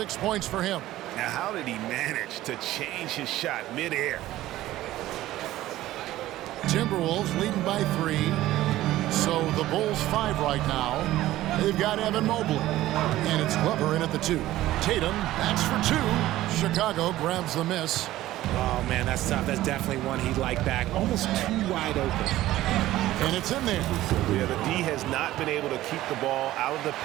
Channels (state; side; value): quieter; left; 15.3 dB